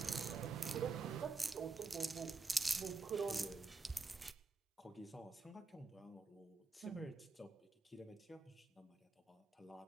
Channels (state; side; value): quieter; left; 4.1 dB